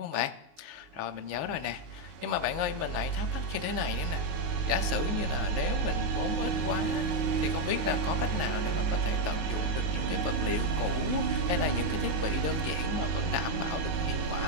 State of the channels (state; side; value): late; left; 19 ms